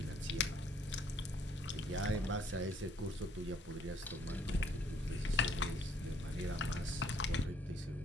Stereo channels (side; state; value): both; normal; correlation 0.63